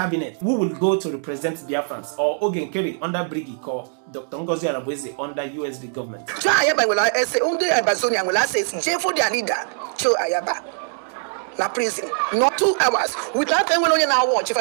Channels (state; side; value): silent; left; 64 dB below the other